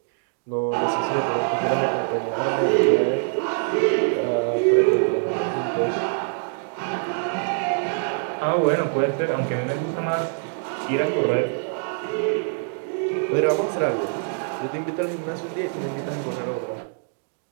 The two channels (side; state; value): left; silent; 62 dB below the other